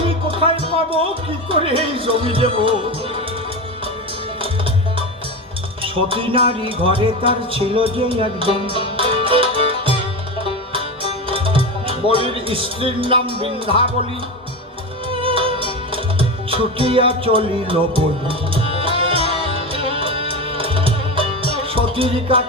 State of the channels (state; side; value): normal; both; correlation 0.21